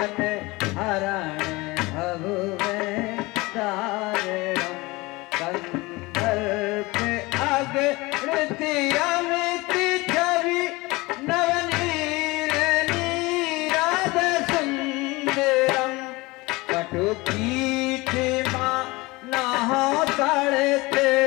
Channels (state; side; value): quieter; right; 22.7 dB